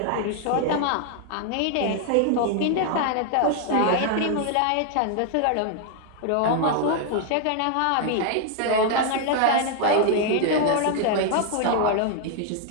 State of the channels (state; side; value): different; both; correlation 0.00